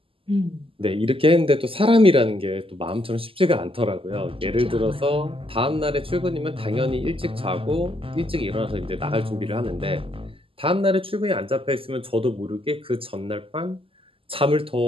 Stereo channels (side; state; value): left; late; 0.26 ms